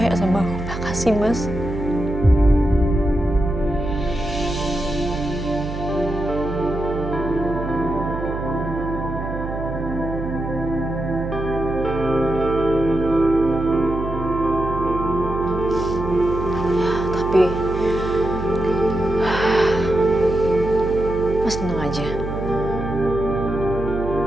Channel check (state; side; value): noise; right; hum, 7 dB below the sound